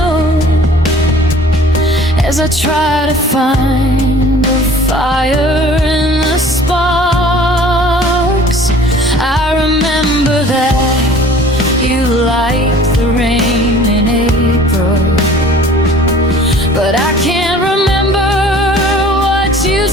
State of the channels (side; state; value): both; normal; correlation 0.49